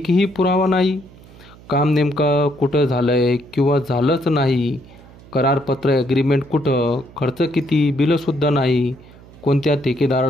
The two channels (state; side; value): noise; right; hum, 22 dB below the sound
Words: पुरावा नाही। काम नेमकं कुठं झालंय किंवा झालंच नाही? करारपत्र ॲग्रीमेंट कुठं? खर्च किती? बिलंसुद्धा नाही। कोणत्या